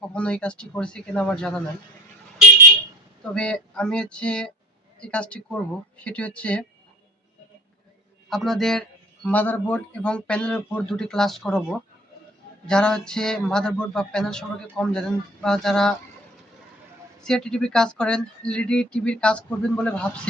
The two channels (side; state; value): both; normal; correlation 0.45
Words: কখনো এই কাজটি করেছে কিনা আমার জানা নাই। তবে আমি এই কাজটি করব। সেটি হচ্ছে আপনাদের মাদারবোর্ড এবং প্যানেলের উপর দুটি ক্লাস করাবো। যারা মাদারবোর্ড বা প্যানেল সম্পর্কে কম জানেন বা যারা সিআরটি টিভির কাজ করেন, এলইডি টিভির কাজ করবেন বলে